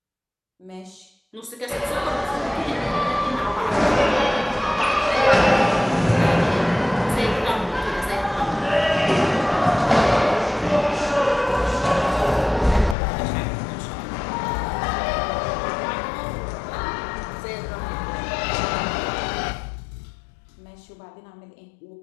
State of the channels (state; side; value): drops out; right; at 13.0 s